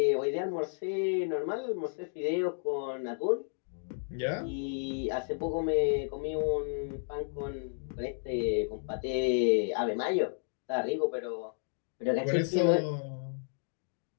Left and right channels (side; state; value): right; silent; digital silence